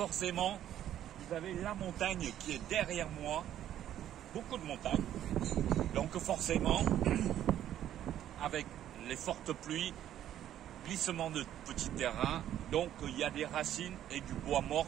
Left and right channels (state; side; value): quieter; left; 11.4 dB